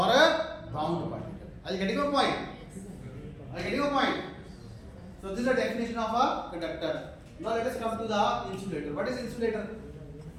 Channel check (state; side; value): identical; both; correlation 1.00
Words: a bound particle. Are you getting my point? Are you getting my point? So this is the definition of a conductor. Now let us come to the insulator. What is insulator?